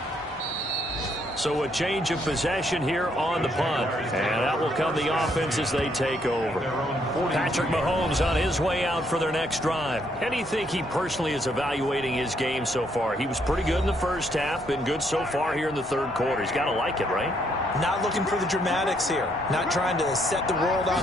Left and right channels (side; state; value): both; normal; correlation 0.72